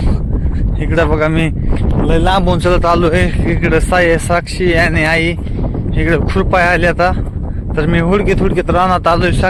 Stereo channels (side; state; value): both; identical; correlation 1.00